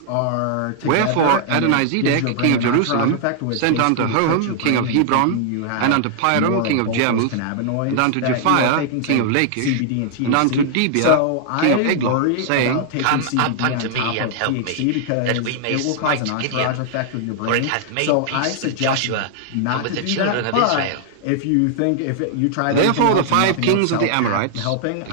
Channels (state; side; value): different; both; correlation -0.01